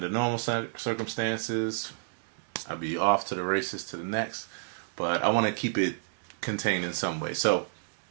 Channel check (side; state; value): left; silent; digital silence